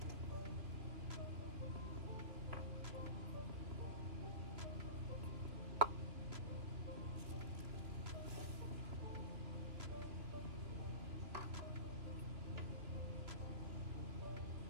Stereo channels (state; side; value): late; left; 3.0 ms